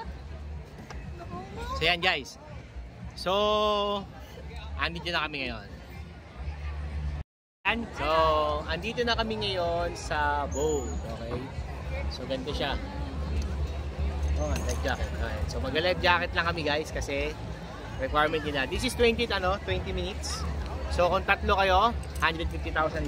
So yan guys. So, andito na kami ngayon. So, andito na kami ngayon sa boat. Okay. So, ganito siya. Oh, life jacket. Okay. So, mag-life jacket lang kami guys kasi requirement nila. This is 20 minutes. So, kung tatlo kayo,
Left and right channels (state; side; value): identical; both; correlation 1.00